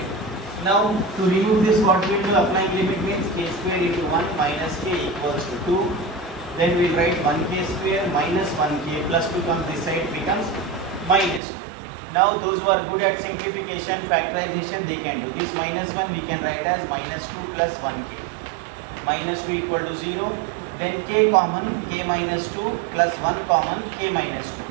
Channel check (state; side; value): drops out; left; at 11.4 s